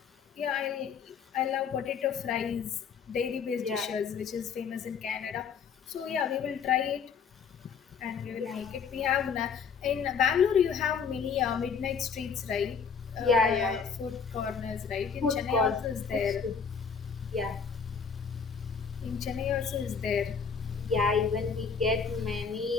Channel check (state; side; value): quieter; right; 6.2 dB